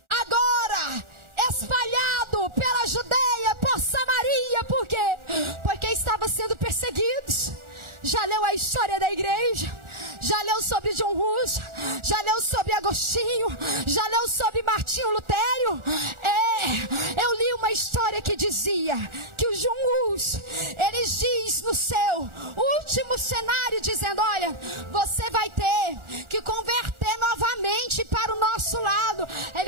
Agora espalhado pela Judeia, por Samaria. Por quê? Porque estava sendo perseguidos. Já leu a história da igreja? Já leu sobre John Hus? Já leu sobre Agostinho? Já leu sobre Martinho Lutério? Eu li uma história que dizia que o John Hus, ele diz no seu último cenário, dizendo: olha, você vai ter que converter novamente para o nosso lado.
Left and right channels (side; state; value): left; late; 1.4 ms